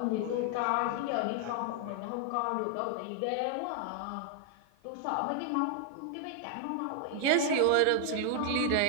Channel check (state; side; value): different; both; correlation 0.00